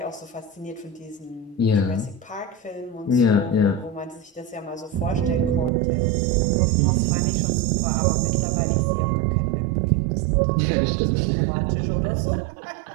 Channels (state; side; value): drops out; left; at 5.7 s